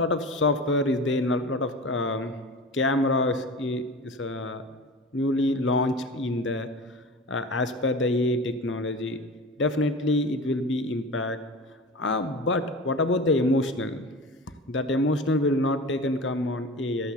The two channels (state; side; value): normal; both; correlation 0.34